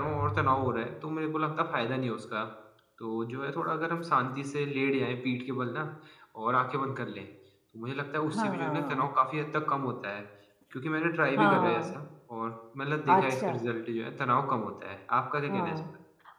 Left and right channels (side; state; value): both; identical; correlation 1.00